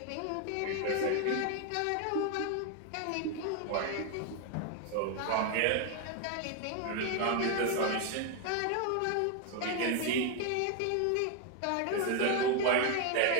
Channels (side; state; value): both; different; correlation 0.01